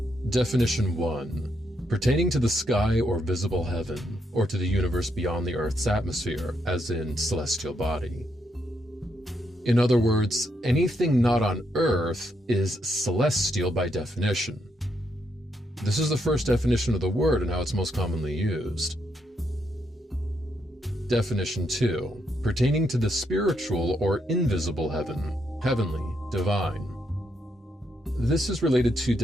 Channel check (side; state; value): both; normal; correlation 0.78